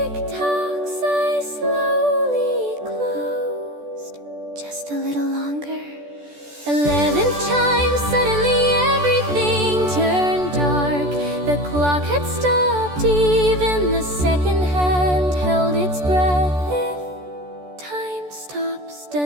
eyes slowly closed. Just a little longer. 11th chime, suddenly everything turned dark. The clock had stopped, even the second hand held its breath. If time stops,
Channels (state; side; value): late; left; 14 ms